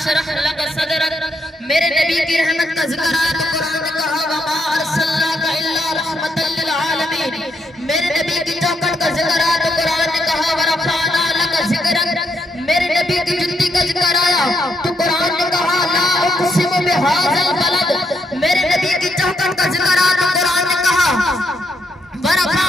لَكَ صَدْرَكَ، میرے نبی کی رحمت کا ذکر آیا تو قرآن نے کہا وَمَا أَرْسَلْنَاكَ إِلَّا رَحْمَةً لِلْعَالَمِينَ، میرے نبی کی چوکٹ کا ذکر آیا تو قرآن نے کہا وَرَفَعْنَا لَكَ ذِكْرَكَ، میرے نبی کی جنتی کا ذکر آیا تو قرآن نے کہا لا اقسم بهذا البلد، میرے نبی کی چوکٹ کا ذکر آیا تو قرآن نے کہا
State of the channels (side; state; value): both; normal; correlation 0.76